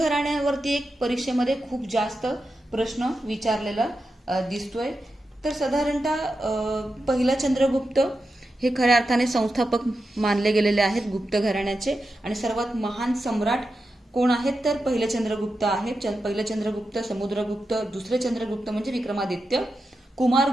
एक परीक्षेमध्ये खूप जास्त प्रश्न विचारलेला दिसतोय. तर साधारणतः पहिला चंद्रगुप्त हे खऱ्या अर्थाने संस्थापक मानले गेलेले आहेत गुप्त घराण्याचे. आणि सर्वात महान सम्राट कोण आहेत तर पहिले चंद्रगुप्त आहेत. पहिले चंद्रगुप्त, समुद्रगुप्त, दुसरे चंद्रगुप्त म्हणजे विक्रमादित्य,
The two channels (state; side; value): normal; both; correlation 0.89